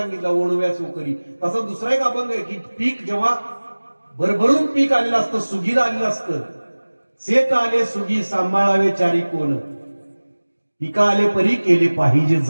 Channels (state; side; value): inverted; both; correlation -1.00